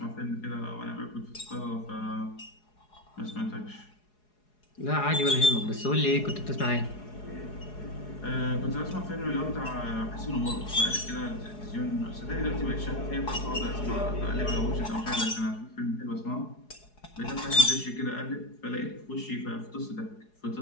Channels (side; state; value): right; late; 4.8 ms